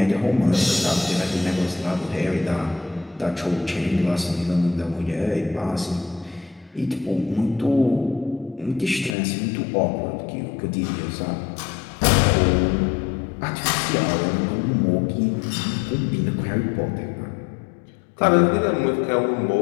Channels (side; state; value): right; drops out; at 9.2 s